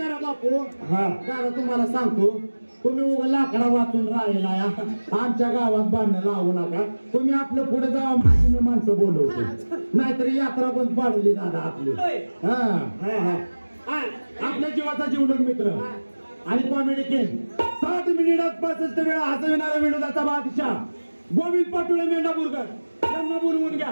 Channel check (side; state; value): both; inverted; correlation -1.00